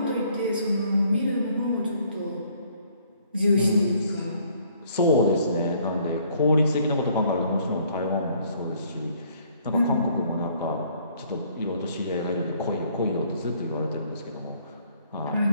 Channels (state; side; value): inverted; both; correlation -0.62